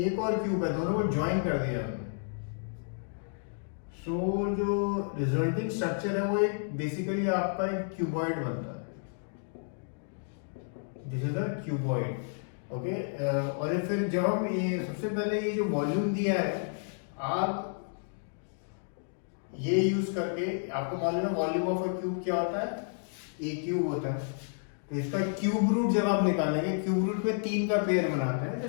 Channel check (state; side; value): silent; right; digital silence